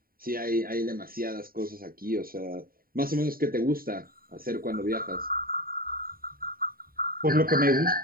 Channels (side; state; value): left; late; 0.43 ms